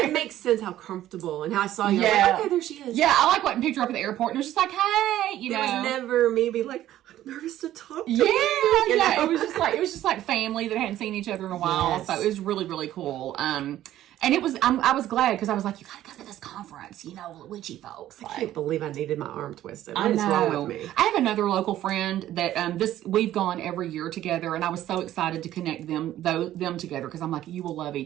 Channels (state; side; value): quieter; left; 13.2 dB